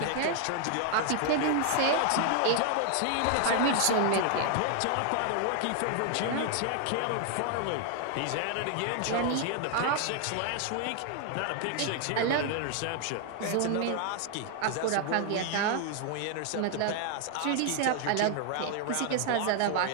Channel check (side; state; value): both; different; correlation 0.00